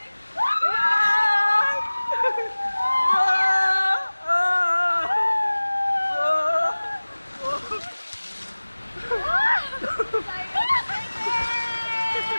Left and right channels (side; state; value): both; inverted; correlation -1.00